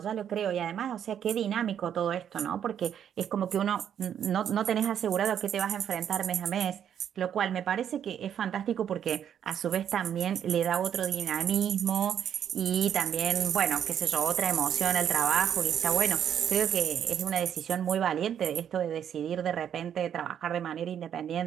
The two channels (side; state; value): left; quieter; 9.1 dB